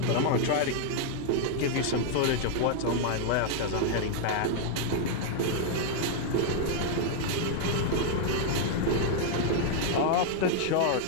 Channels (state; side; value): different; both; correlation 0.00